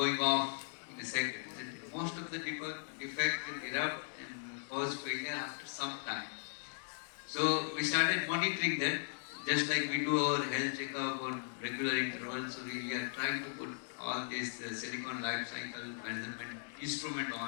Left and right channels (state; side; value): silent; right; digital silence